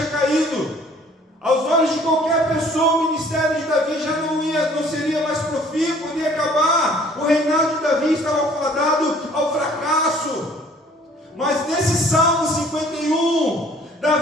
caído. Aos olhos de qualquer pessoa, o ministério de Davi já não seria mais profícuo, iria acabar. O reinado de Davi estava fadado ao fracasso. Mas nesse Salmo 51,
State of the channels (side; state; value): both; normal; correlation 0.55